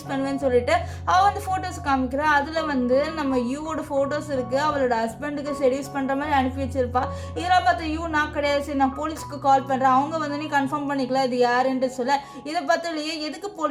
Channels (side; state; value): both; identical; correlation 1.00